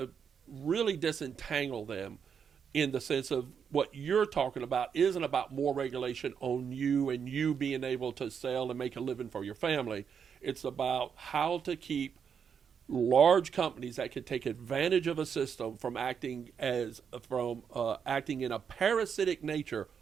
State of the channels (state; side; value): quieter; left; 7.1 dB